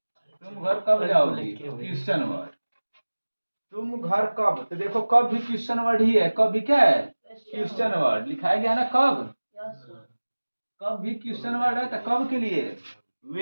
तुम घर कब जाओगी? Question word. तुम घर कब, तो देखो कब भी क्वेश्चन वर्ड ही है, कब भी क्या है? Question word. लिखाया गया ना कब, कब भी क्वेश्चन वर्ड है। तो कब के लिए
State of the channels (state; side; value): inverted; both; correlation -1.00